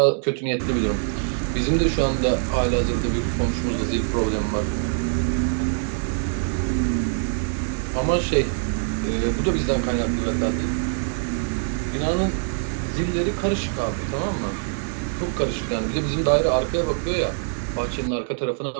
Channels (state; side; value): silent; left; digital silence